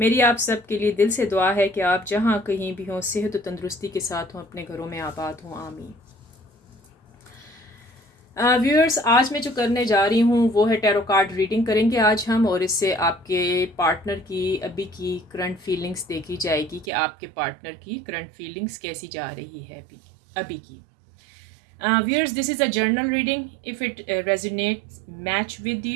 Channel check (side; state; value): left; drops out; at 16.9 s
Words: आप सब के लिए दिल से दुआ है कि आप जहाँ कहीं भी हों सेहत और तंदुरुस्ती के साथ हों, अपने घरों में आबाद हों, आमीन। व्यूअर्स, आज मैं जो करने जा रही हूँ वो है टैरो कार्ड रीडिंग करेंगे आज हम, और इससे आपके पार्टनर की अभी की करंट फीलिंग्स देखी जाएगी कि आपके पार्टनर की करंट फीलिंग्स कैसी जा रही है अभी की। Viewers, this is a journal reading. If it resonates, match with